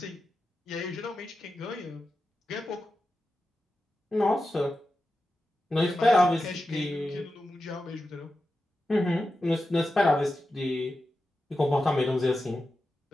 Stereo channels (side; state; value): both; normal; correlation 0.91